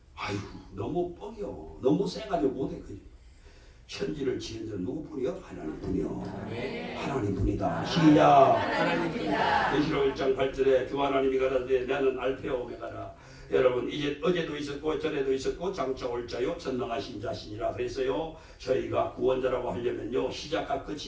아이고 너무 뻥이요. 너무 세가지고 못해. 천지를 지은 자 누구뿐이요? 하나님뿐이요. 하나님뿐이다. 시작. 하나님뿐이다. 계시록 1장 8절에 주 하나님이 가라사대 나는 알파와 오메가라. 여러분 이제 어제도 있었고 전에도 있었고 장차 올 자요 전능하신 자신이라 그랬어요. 저희가 구원자라고 하려면요 시작과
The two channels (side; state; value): both; identical; correlation 1.00